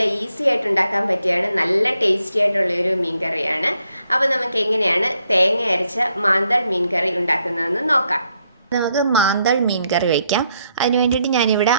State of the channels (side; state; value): both; inverted; correlation -0.76